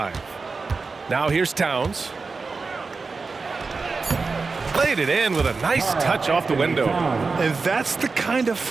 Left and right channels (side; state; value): left; quieter; 4.3 dB